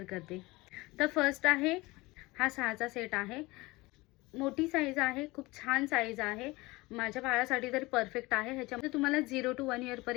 करते. तर फर्स्ट आहे हा 6चा सेट आहे. मोठी साईज आहे, खूप छान साईज आहे. माझ्या बाळासाठी तरी परफेक्ट आहे. ह्याच्यामध्ये तुम्हाला 0 to 1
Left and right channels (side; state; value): right; quieter; 21.9 dB